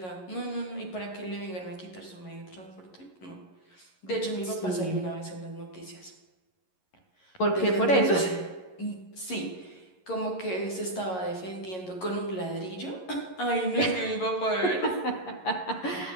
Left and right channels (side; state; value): right; late; 11 ms